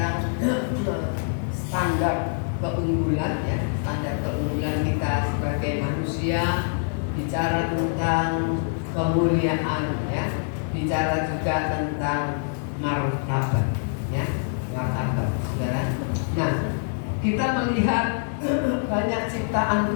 standar keunggulan ya, standar keunggulan kita sebagai manusia, bicara tentang kemuliaan ya, bicara juga tentang martabat ya, martabat saudara. Nah, kita melihat banyak ciptaan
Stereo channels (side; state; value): right; silent; digital silence